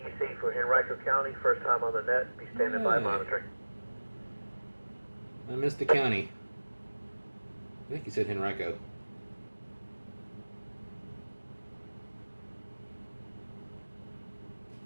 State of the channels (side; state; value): both; inverted; correlation -1.00